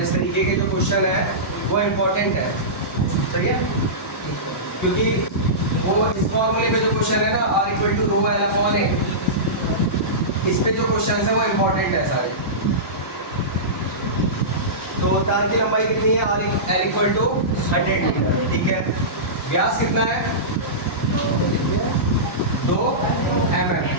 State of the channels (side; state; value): both; normal; correlation -0.19